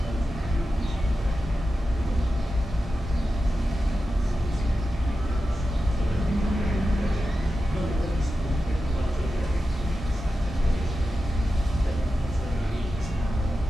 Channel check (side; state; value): both; normal; correlation 0.92